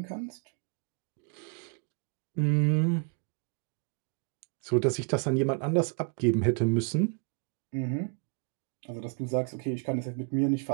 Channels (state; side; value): quieter; left; 38.8 dB